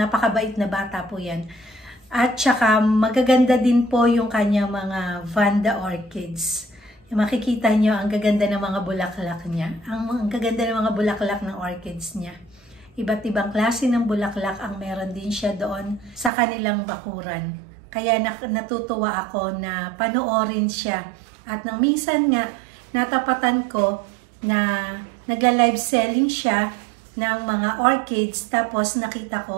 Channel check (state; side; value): drops out; left; at 16.3 s